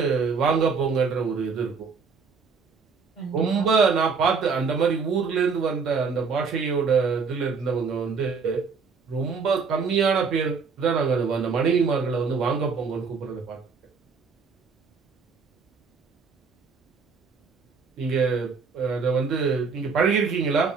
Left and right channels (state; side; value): quieter; left; 5.2 dB